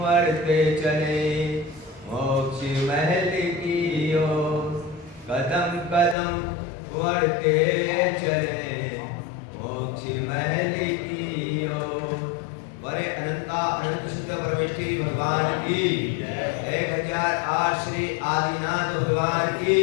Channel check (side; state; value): right; drops out; at 6.2 s